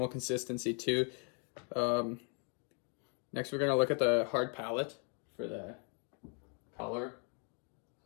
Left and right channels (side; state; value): right; quieter; 39.0 dB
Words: consistency too. Next, we're going to look at the hard palate for the color.